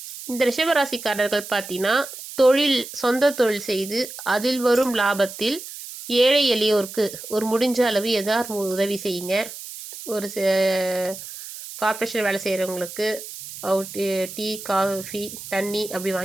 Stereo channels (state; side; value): noise; right; hiss, 12 dB below the sound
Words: இந்த ரிஷபராசிக்காரர்கள் பார்த்தீங்கன்னா, சொந்த தொழில் செய்து அதில் வரும் லாபத்தில் ஏழை எளியோருக்கு ஒரு முடிஞ்ச அளவு ஏதாவது உதவி செய்யுங்க. ஒரு கார்ப்பரேஷன் வேலை செய்கிறவங்களுக்கு டீ, காஃபி, தண்ணி அப்படி